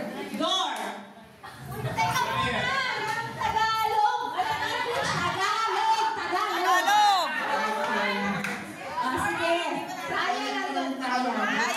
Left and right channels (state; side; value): identical; both; correlation 1.00